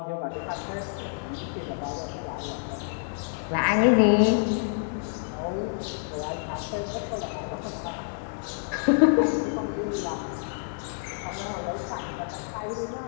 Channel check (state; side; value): silent; right; 59 dB below the other